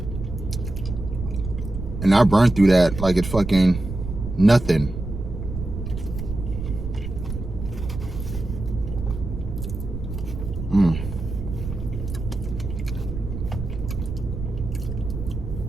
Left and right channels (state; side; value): noise; right; rumble, 7 dB below the sound